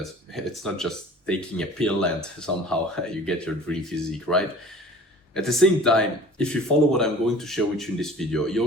it's not just taking a pill and somehow you get your dream physique, right? At the same time, if you follow what I'm going to share with you in this video,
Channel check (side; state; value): both; normal; correlation 0.45